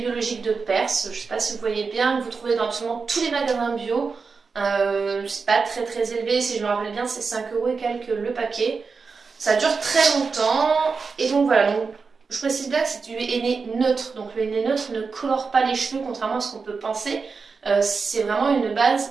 de Perse, je ne sais pas si vous voyez bien, que vous trouvez dans absolument tous les magasins bio. C'est pas très élevé, si je me rappelle bien c'est 5 € et quelques le paquet. Ça dure très longtemps et donc voilà. Donc, je précise bien que c'est du henné neutre, donc le henné neutre ne colore pas les cheveux contrairement à ce qu'on peut penser. C'est vraiment une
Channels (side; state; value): left; quieter; 4.9 dB